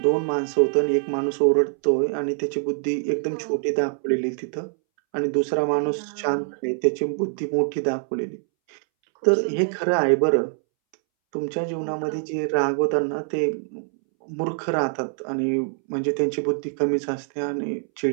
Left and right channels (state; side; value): silent; left; 63 dB below the other